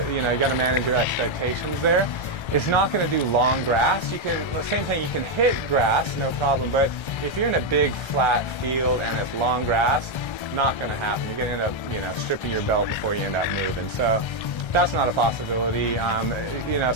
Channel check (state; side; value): late; right; 1.3 ms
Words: you know, you got to manage your expectations there. It's not going to do long grass. You can, same thing, you can hit grass, no problem, but if you're in a big flat field and it's long grass, not going to happen. You're going to end up, you know, stripping your belt before you end up moving. So that's not a possibility. You know,